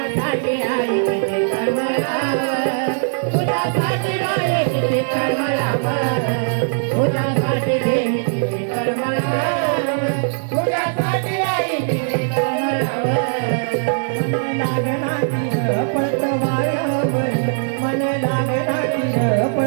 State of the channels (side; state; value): left; silent; digital silence